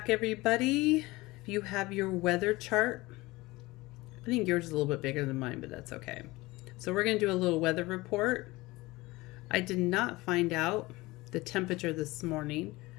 everybody. If you have your weather chart, I think yours is a little bit bigger than mine, but that's okay. So we're going to do a little weather report. I did not find out the temperature this morning.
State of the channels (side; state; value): right; quieter; 20.9 dB